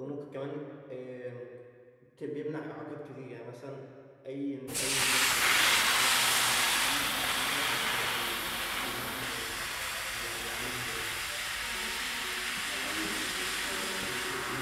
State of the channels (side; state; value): both; identical; correlation 1.00